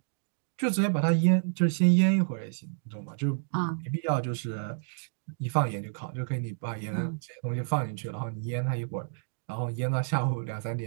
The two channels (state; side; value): silent; left; digital silence